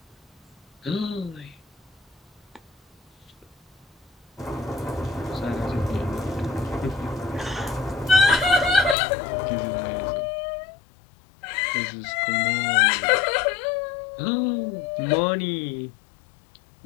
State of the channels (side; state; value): right; drops out; at 9.0 s